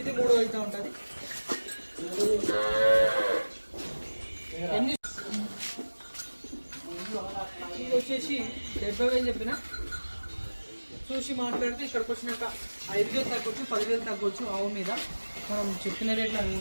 3 అయితే ఉంటుంది. ఇది వచ్చేసి 70,000 చెప్పిన చూసి మాట్లాడితే ఇక్కడికి వచ్చినాక 5,000 తగ్గొచ్చు, 10,000 తగ్గొచ్చు. ఆవు మీద మనం చెప్పిన రేట్లు అవి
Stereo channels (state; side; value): inverted; both; correlation -1.00